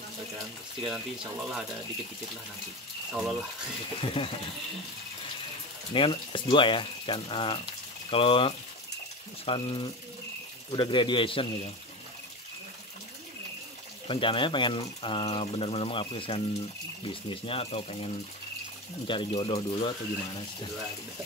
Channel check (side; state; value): both; normal; correlation 0.25